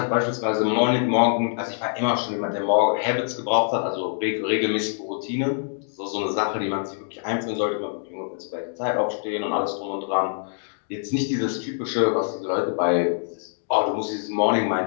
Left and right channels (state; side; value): silent; right; digital silence